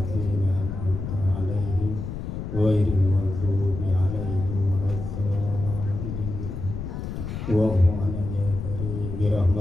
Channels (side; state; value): left; noise; rumble, 6 dB below the sound